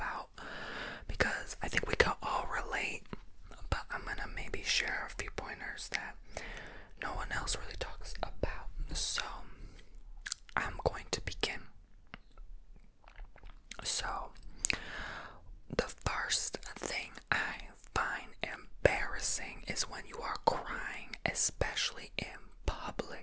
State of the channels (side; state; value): both; identical; correlation 1.00